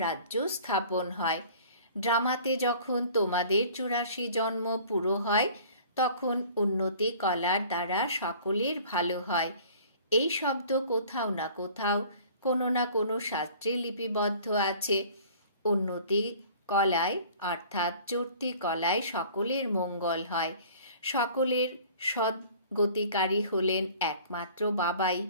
রাজ্য স্থাপন হয়। ড্রামাতে যখন তোমাদের 84 জন্ম পুরো হয়, তখন উন্নতি কলার দ্বারা সকলের ভালো হয়। এই শব্দ কোথাও না কোথাও কোনো না কোনো শাস্ত্রে লিপিবদ্ধ আছে। উন্নতি কলায় অর্থাৎ চর্তি কলায় সকলের মঙ্গল হয়। সকলের সদ্গতিকারী হলেন একমাত্র বাবাই,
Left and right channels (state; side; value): inverted; both; correlation -0.49